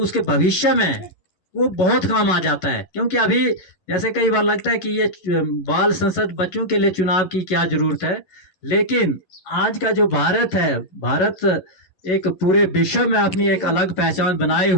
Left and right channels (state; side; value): late; right; 11 ms